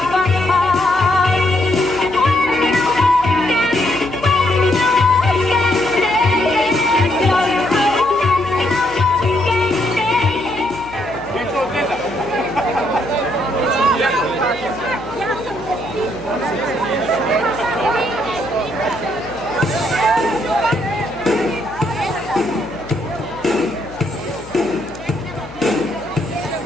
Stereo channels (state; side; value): noise; left; hum, 18 dB below the sound